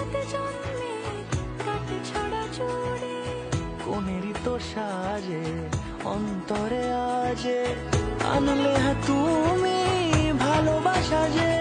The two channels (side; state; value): both; identical; correlation 1.00